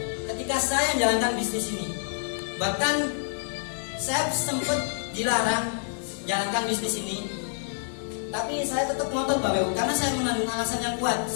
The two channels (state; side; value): silent; right; digital silence